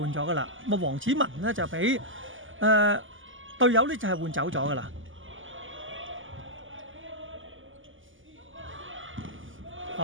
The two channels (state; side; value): late; left; 0.58 ms